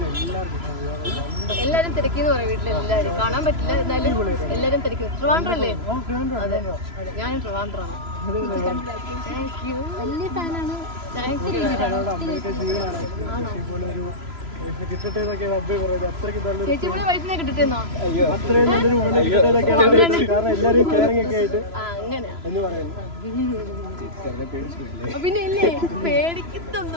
എല്ലാരും തിരക്കിന്ന് പറയാം വീട്ടിലെല്ലാരും കാണാൻ പറ്റില്ല. എന്നാലും എല്ലാരും തിരക്കുന്നു. ട്രിവാൻഡ്രം അല്ലേ? അതെ, ഞാനും ട്രിവാൻഡ്രമാണ്. വലിയ ഫാനാണ്. ചേച്ചിയുടെ വൈഫിനെ കിട്ടിട്ടെന്നോ? പിന്നെ ഇല്ലേ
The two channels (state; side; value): late; left; 3.0 ms